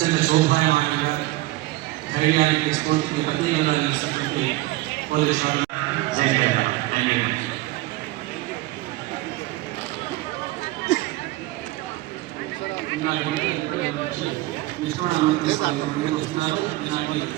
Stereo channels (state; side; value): quieter; left; 18.8 dB